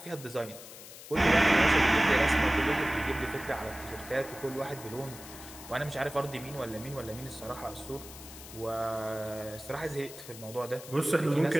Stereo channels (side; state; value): left; noise; hiss, 15 dB below the sound